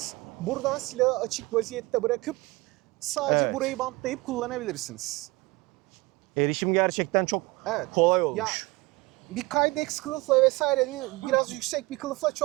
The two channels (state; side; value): quieter; left; 22.3 dB